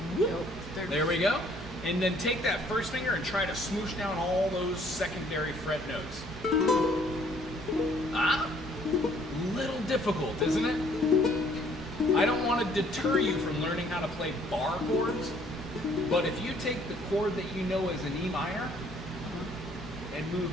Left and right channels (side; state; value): both; normal; correlation 0.61